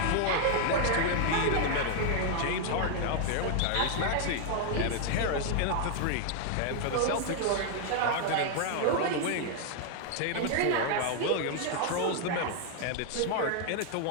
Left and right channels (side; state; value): both; different; correlation 0.00